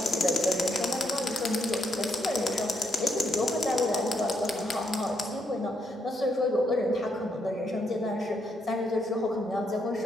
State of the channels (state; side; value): normal; both; correlation 0.77